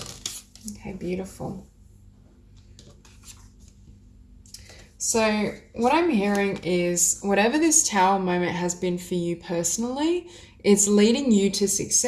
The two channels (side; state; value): both; identical; correlation 1.00